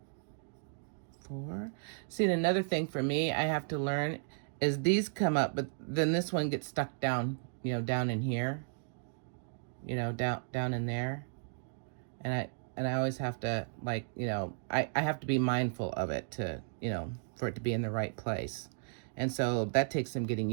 4. See, another thing for me I have to learn is these come up, but then this one gets stuck down, down in here, down in there. And I always have to, like, I have to be mindful of it to, for it to be in the right place. And so that takes some getting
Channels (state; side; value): silent; left; digital silence